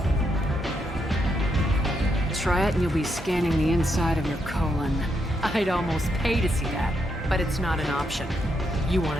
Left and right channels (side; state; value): both; normal; correlation 0.79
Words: Try it and you'll be scanning the inside of your colon. I'd almost pay to see that, but it's not an option. You